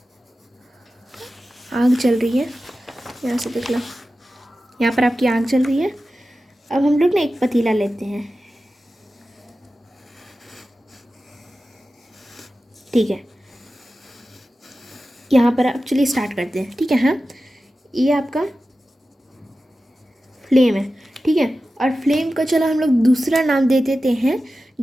आग चल रही है, यहाँ से देख लो, यहाँ पर आपकी आग चल रही है। अब हम लोग ना एक पतीला लेते हैं, ठीक है। यहाँ पर आप चलिए स्टार्ट करते हैं, ठीक है। हाँ, ये आपका फ्लेम है, ठीक है। और फ्लेम का चलो हम लोग दूसरा नाम दे देते हैं,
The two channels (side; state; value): both; normal; correlation 0.94